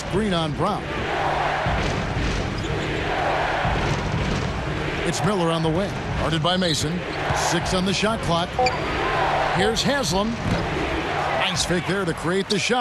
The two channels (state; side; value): identical; both; correlation 1.00